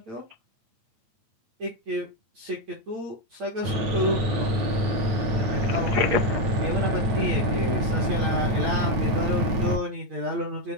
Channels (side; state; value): left; late; 9.1 ms